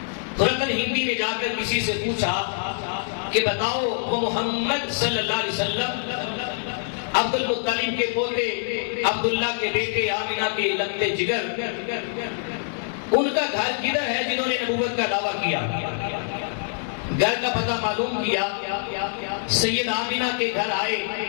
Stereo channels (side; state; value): right; silent; 62 dB below the other